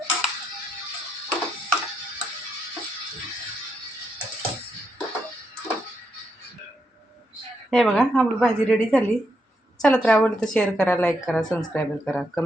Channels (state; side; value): normal; both; correlation 0.80